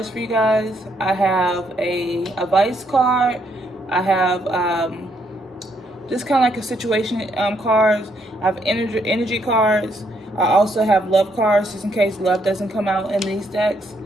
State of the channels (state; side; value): normal; both; correlation 0.73